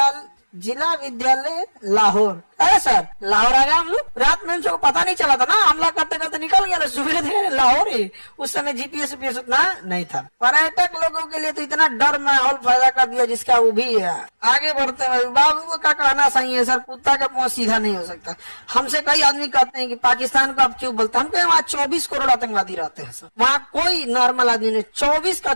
जिला विद्यालय लाहौर। अरे सर लाहौर आ गया हम लोग, रात में उनको पता नहीं चला था ना, हमला करते करते निकल गया, सुबह थे लाहौर ही। उस समय GPS उतना नहीं था। पर्यटक लोगों के लिए तो इतना डर माहौल पैदा कर दिया जिसका वो भी है। आगे बढ़ते हैं, बाबू का कहना सही है सर, कुत्ता का मुंह सीधा नहीं हो सकता। हमसे कई आदमी कहते हैं कि पाकिस्तान को आप क्यों बोलते हैं, हम कहें वहाँ 24 करोड़ आतंकवादी रहते हैं सर, वहाँ कोई नॉर्मल आदमी नहीं,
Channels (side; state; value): both; inverted; correlation -1.00